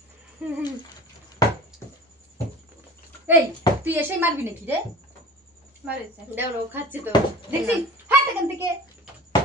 এই তুই এসেই মারবি নাকি রে মারেছে দেখো ও খাচ্ছে তো দেখছি হাত এখান থেকে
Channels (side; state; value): both; normal; correlation 0.40